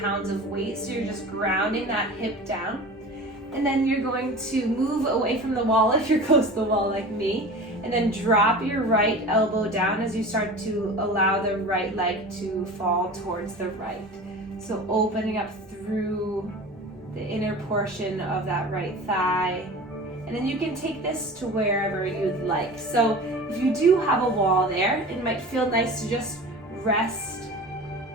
pounds of weight, so you're just grounding that hip down. And then you're going to move away from the wall if you're close to the wall like me, and then drop your right elbow down as you start to allow the right leg to fall towards the right. So opening up through the inner portion of that right thigh. And then you can take this to wherever you'd like. So if you do have a wall there, it might feel nice to just rest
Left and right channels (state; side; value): normal; both; correlation 0.36